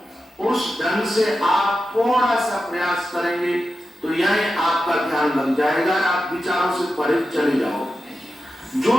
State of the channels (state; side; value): normal; both; correlation 0.91